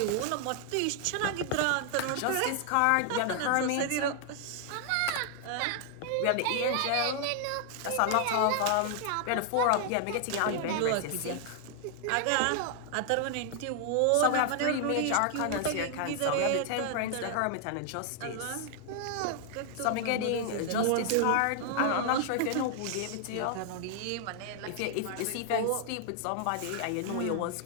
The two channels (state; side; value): different; both; correlation 0.00